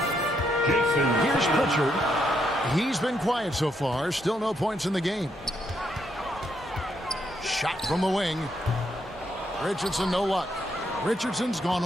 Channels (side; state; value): both; normal; correlation 0.77